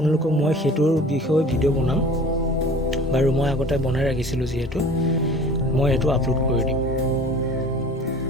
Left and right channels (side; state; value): both; normal; correlation 0.45